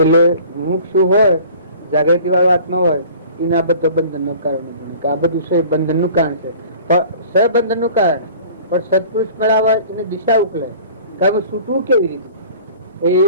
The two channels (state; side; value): inverted; both; correlation -0.46